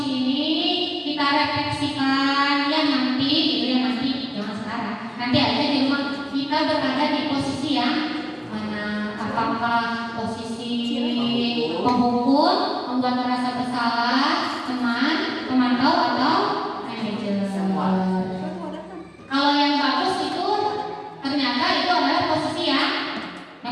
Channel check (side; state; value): both; identical; correlation 1.00